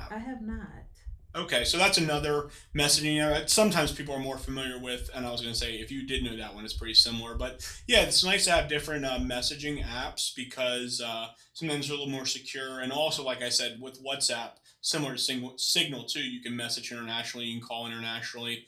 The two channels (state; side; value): identical; both; correlation 1.00